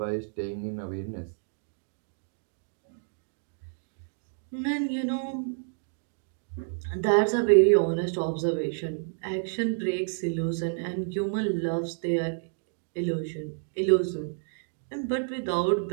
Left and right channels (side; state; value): left; silent; digital silence